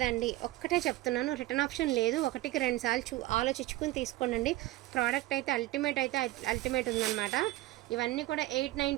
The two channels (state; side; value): quieter; left; 17.3 dB